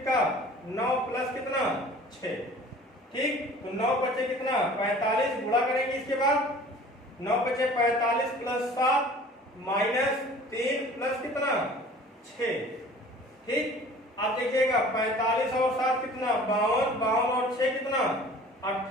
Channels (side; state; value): both; normal; correlation 0.46